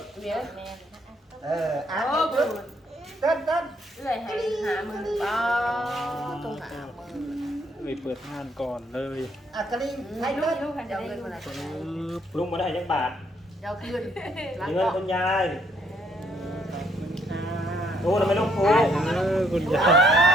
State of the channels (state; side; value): normal; both; correlation 0.69